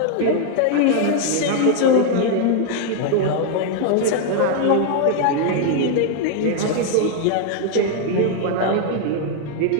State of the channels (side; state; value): both; different; correlation 0.00